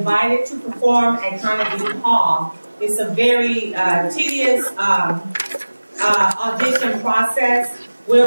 to perform at Carnegie Hall, it's a very tedious audition process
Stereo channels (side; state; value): both; inverted; correlation -1.00